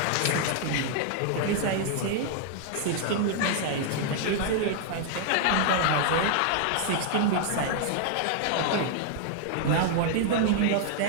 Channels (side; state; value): both; different; correlation 0.00